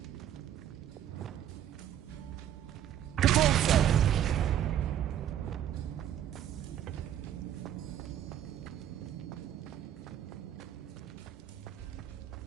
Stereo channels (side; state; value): left; quieter; 10.8 dB